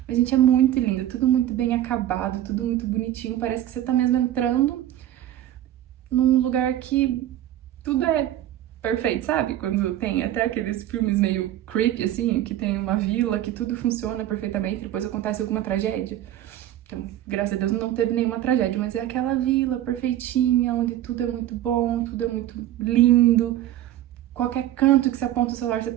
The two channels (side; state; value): left; quieter; 12.8 dB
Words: Mas, gente, é muito lindo, tudo muito bem acabado, tudo muito bonitinho. Parece que você tá mesmo entrando num lugar que tudo é perfeito, sabe? Quando tem até aqueles filmes meio creepy, assim, que tem uma vila, que tudo funciona perfeitamente, depois acontece alguma tragédia. Então, graças a Deus não teve nenhuma tragédia, mas é aquela vila perfeitinha, onde tudo é muito bom, tudo é muito lindo. Qualquer canto que você aponta o celular, você